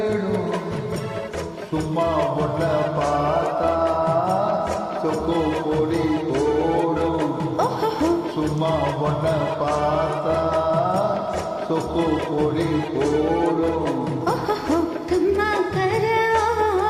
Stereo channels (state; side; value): identical; both; correlation 1.00